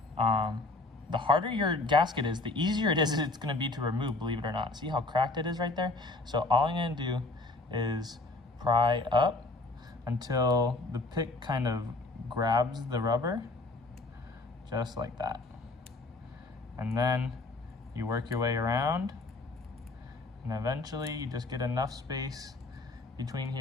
The harder your gasket is, the easier it is it's going to be to remove, believe it or not. See how cracked it is right there? So all I'm going to do is pry up until the pick kind of grabs the rubber, just like that. And then you work your way around, and eventually you just get enough space between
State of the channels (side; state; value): right; quieter; 3.1 dB